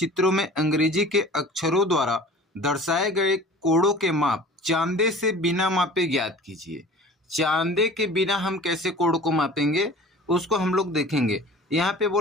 में अंग्रेजी के अक्षरों द्वारा दर्शाए गए कोड़ों के माप चांदे से बिना मापे ज्ञात कीजिए। चांदे के बिना हम कैसे कोड़ को मापेंगे उसको हम लोग देखेंगे। यहाँ पे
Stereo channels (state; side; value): normal; both; correlation 0.43